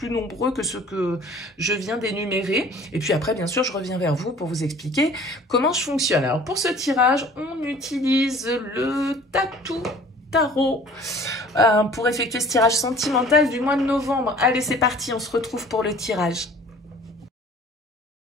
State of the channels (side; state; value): both; normal; correlation 0.49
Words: nombreux que ceux que je viens d'énumérer. Et puis après, bien sûr, je reviens vers vous pour vous expliquer comment je fonctionne. Alors, pour ce tirage, on utilise le Tatou Tarot pour effectuer ce tirage sentimental du mois de novembre. Allez, c'est parti, on se retrouve pour le tirage.